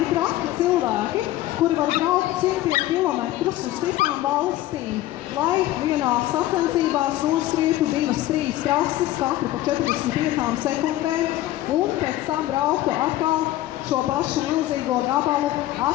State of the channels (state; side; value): quieter; right; 15.1 dB